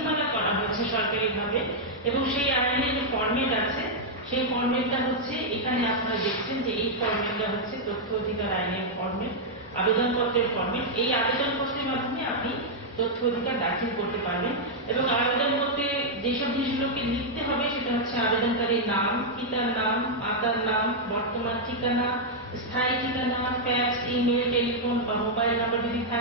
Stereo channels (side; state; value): both; normal; correlation -0.04